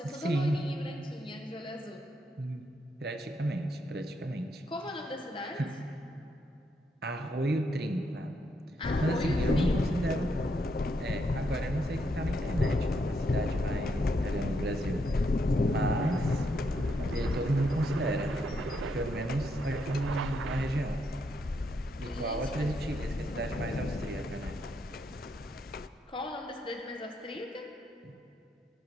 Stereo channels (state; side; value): normal; both; correlation 0.78